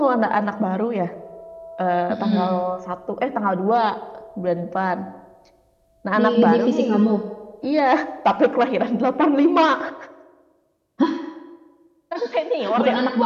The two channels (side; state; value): both; identical; correlation 1.00